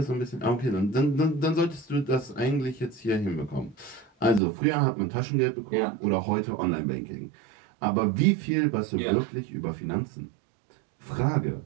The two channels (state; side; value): drops out; left; at 4.4 s